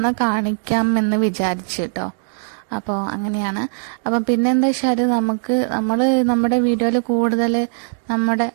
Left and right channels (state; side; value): silent; left; digital silence